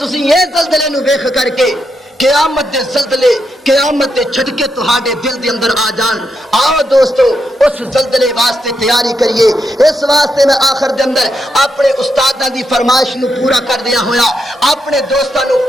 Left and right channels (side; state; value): both; normal; correlation 0.82